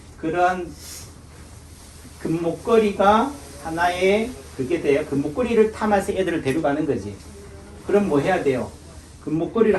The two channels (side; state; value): both; identical; correlation 1.00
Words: 그런 금목걸이가 하나의 그게 돼요. 금목걸이를 탐해서 애들을 데려가는 거지. 그럼 뭐 해야 돼요?